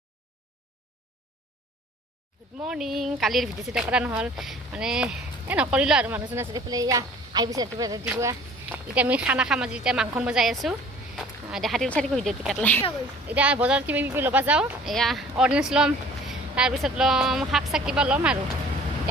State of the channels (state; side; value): normal; both; correlation 0.50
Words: গুড মৰ্ণিং কালিৰ ভিডিঅ' চিডিঅ' কৰা নহ'ল মানে নকৰিলোঁ আৰু মানুহজন আছে এইফালে এয়া আহিছে ৰাতিপুৱা এতিয়া আমি খানা খাম আজি এতিয়া মাংস বজাই আছোঁ দেখা দিব চাই ভিডিঅ'টো কাটলাই এতিয়া বজাৰত কিবা কিবি ল'ব যাওঁ এয়া অৰেঞ্জ ল'ম তাৰপিছত ল'ম শাক চাক কিবা ল'ম আৰু